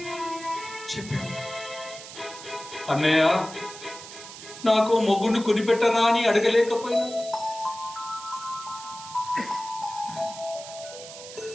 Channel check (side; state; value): right; noise; hiss, 14 dB below the sound